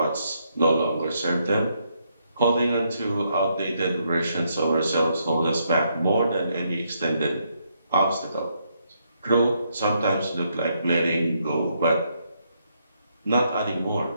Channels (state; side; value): inverted; both; correlation -0.76